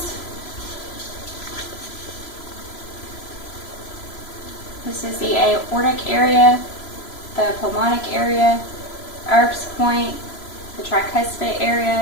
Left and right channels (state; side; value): late; right; 3.0 ms